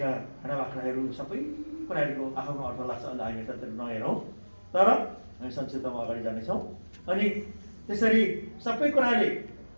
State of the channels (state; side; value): inverted; both; correlation -1.00